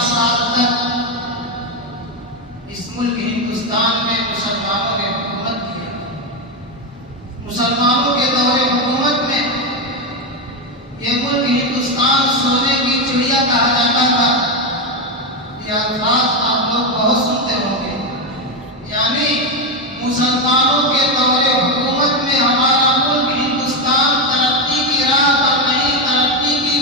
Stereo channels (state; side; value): normal; both; correlation 0.09